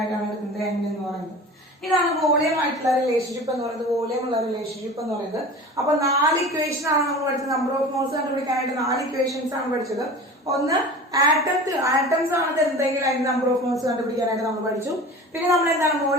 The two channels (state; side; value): normal; both; correlation 0.37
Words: എടുക്കുന്നത് N എന്ന് പറയുന്നത്. ഇതാണ് വോളിയം ആയിട്ടുള്ള റിലേഷൻഷിപ്പ് എന്ന് പറയുന്നത്, വോളിയം ഉള്ള റിലേഷൻഷിപ്പ് എന്ന് പറയുന്നത്. അപ്പൊ 4 ഇക്വേഷൻ ആണ് നമ്മൾ പഠിച്ചത്. നമ്പർ ഓഫ് മോൾസ് കണ്ടുപിടിക്കാനായിട്ട് 4 ഇക്വേഷൻസ് ആണ് പഠിച്ചത്. ഒന്ന് ആറ്റംസ് ആണ് തരുന്നതെങ്കിൽ അതിന്റെ നമ്പർ ഓഫ് മോൾസ് കണ്ടുപിടിക്കാനായിട്ട് നമ്മൾ പഠിച്ചു. പിന്നെ നമ്മൾ എന്താണ്